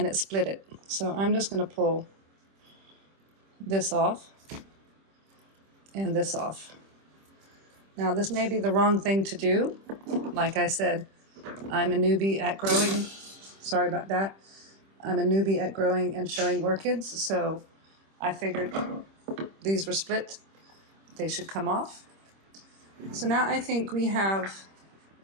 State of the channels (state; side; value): late; left; 26 ms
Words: split it. So I'm just going to pull this off and this off. Now this may be the wrong thing to do. Like I said, I'm a newbie at growing. Sorry about that. I'm a newbie at growing and showing orchids, so I figured these were split. They should come off. So now I think we have